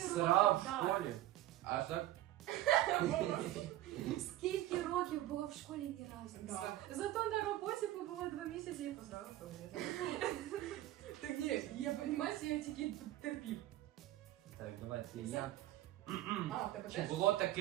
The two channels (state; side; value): quieter; left; 14.9 dB